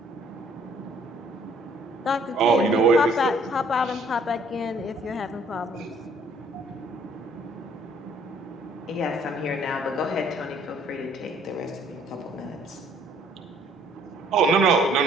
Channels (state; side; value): normal; both; correlation 0.61